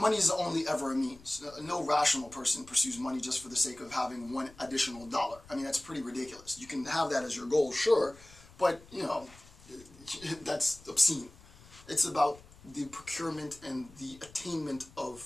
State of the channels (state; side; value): noise; left; rumble, 22 dB below the sound